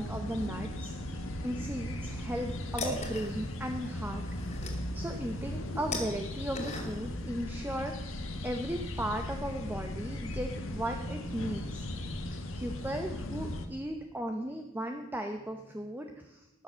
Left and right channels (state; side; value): normal; both; correlation 0.75